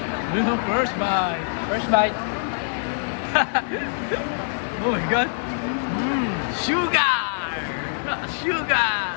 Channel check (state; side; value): silent; right; 59 dB below the other